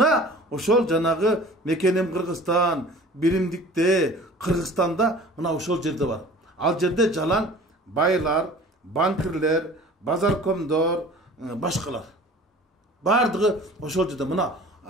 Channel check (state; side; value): normal; both; correlation 0.45